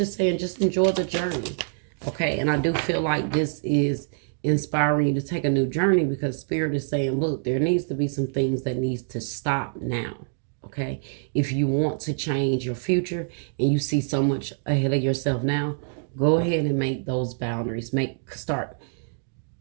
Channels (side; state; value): left; silent; digital silence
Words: is saying just enjoy the journey. Okay, and I do feel like this is inspiring you to take a new journey, because Spirit is saying, look, there needs to be some things that needs to stop now. Okay, if you want to change your future and you see so much ahead of yourself now, go ahead and make those boundaries. Start